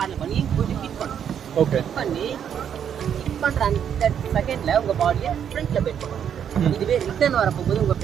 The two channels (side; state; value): left; quieter; 8.6 dB